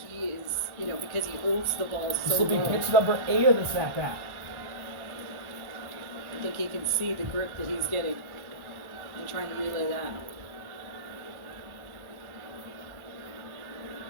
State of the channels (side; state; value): left; late; 1.1 ms